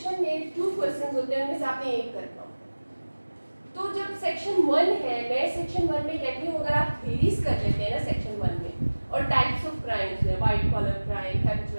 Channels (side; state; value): both; inverted; correlation -1.00